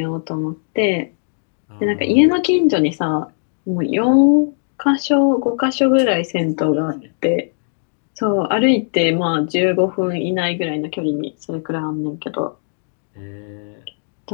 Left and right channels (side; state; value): right; silent; 67 dB below the other